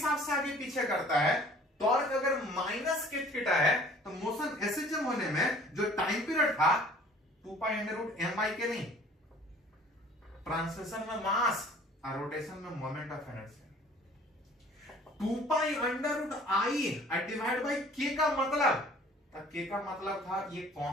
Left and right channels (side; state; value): both; normal; correlation 0.51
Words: से आगे पीछे करता है, टॉर्क अगर माइनस के थीटा है, तो मोशन एसएचएम होने में जो टाइम पीरियड था 2 pi under root M by K नहीं, ट्रांसलेशन में मास और रोटेशन में moment of inertia. 2 pi under root I divide by K का मतलब, के का मतलब था ये